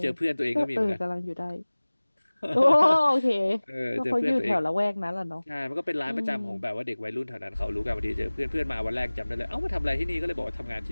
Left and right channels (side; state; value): both; inverted; correlation -1.00